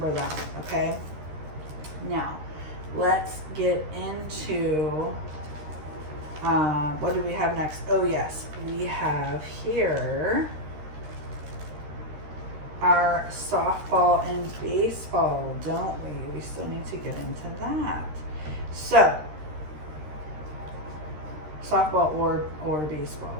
that, okay? Now, let's get into, what do we have next? Oh, yes, we have here our softball and baseball, don't we? We still need to get into that. So, softball or baseball.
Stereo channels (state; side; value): late; left; 13 ms